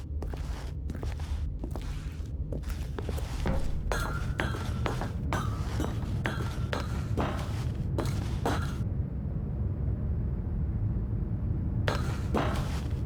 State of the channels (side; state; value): both; identical; correlation 1.00